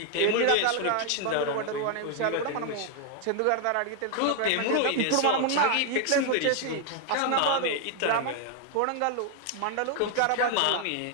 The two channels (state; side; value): different; both; correlation 0.00